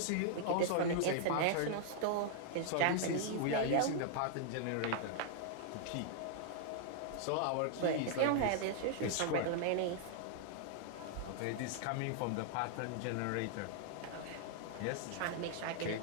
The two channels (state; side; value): different; both; correlation -0.01